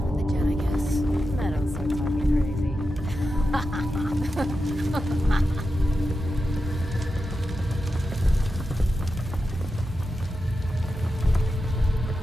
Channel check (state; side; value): normal; both; correlation 0.90